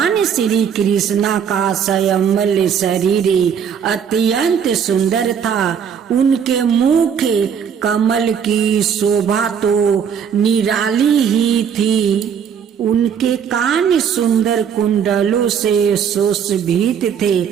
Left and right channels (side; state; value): left; quieter; 7.6 dB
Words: श्री कृष्णा का संयमल शरीर अत्यंत सुंदर था। उनके मुख कमल की शोभा तो निराली ही थी। उनके कान सुंदर कुंडलों से सुशोभित थे।